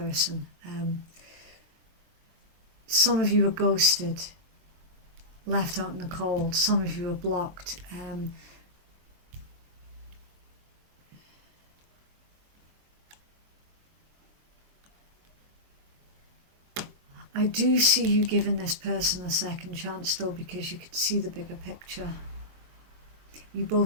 Some of you are ghosted, left out in the cold. Some of you are blocked. I do see you giving this person a second chance though, because you can see the bigger picture. You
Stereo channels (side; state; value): left; late; 23 ms